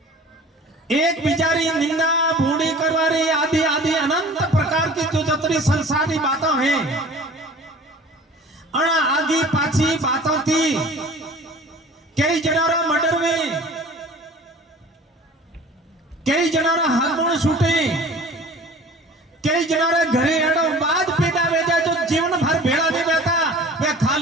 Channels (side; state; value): both; normal; correlation 0.44